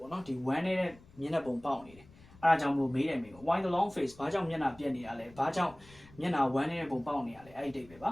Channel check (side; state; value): left; noise; rumble, 23 dB below the sound